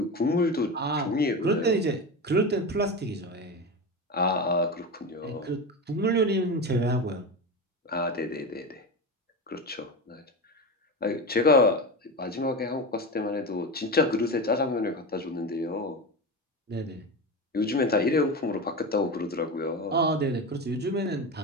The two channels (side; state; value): both; normal; correlation 0.22